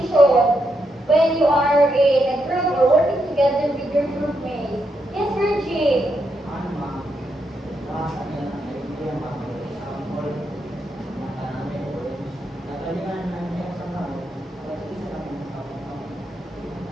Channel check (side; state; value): both; normal; correlation 0.81